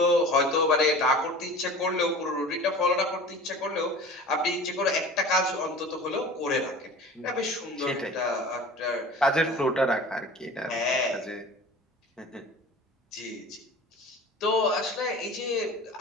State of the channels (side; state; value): both; normal; correlation 0.40